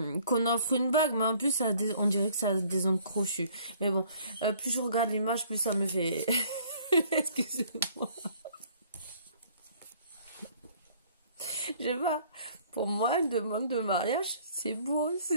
qu'on offre une bague, mais en plus, ça on dirait que ça a des ongles crochus. Mais bon, plus je regarde l'image, plus ça me fait... Excusez-moi. Je sais pas. Pour moi, une demande de mariage, c'est beau,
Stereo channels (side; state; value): both; inverted; correlation -0.57